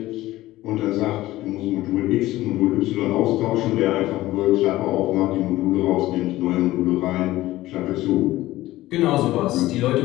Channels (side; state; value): right; quieter; 16.6 dB